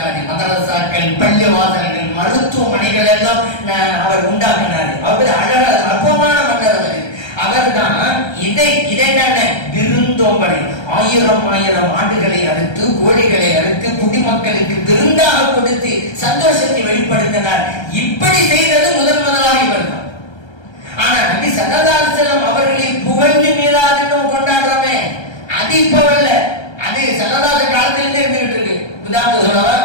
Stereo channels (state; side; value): late; right; 1.3 ms